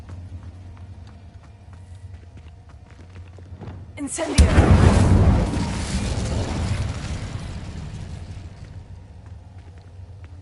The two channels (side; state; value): both; identical; correlation 1.00